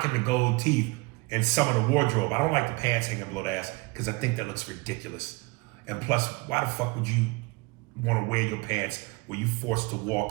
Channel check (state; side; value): quieter; left; 25.7 dB